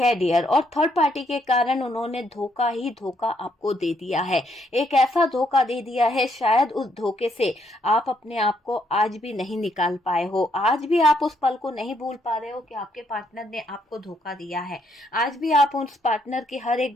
डियर। और थर्ड पार्टी के कारण उन्होंने धोखा ही धोखा आपको दे दिया है, एक ऐसा धोखा दे दिया है शायद उस धोखे से आप अपने आप को आज भी नहीं निकाल पाए हो, आज भी आप उस पल को नहीं भूल पा रहे हो कि आपके पार्टनर ने आपको धोखा दिया है, आज भी आप उस पार्टनर की हर एक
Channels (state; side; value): normal; both; correlation 0.73